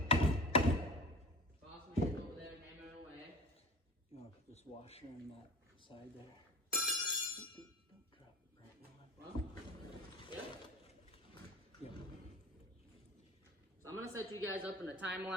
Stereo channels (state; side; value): normal; both; correlation 0.35